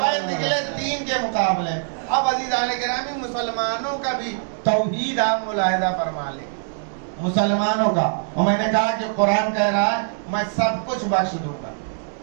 بیت نکلے 3 کے مقابلے. اب عزیزان گرامی, مسلمانوں کا بھی توحید آپ ملاحظہ فرما لیں. مسلمانوں کا, اور میں نے کہا کہ قرآن کہہ رہا ہے میں سب کچھ بخش دوں گا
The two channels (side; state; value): left; silent; digital silence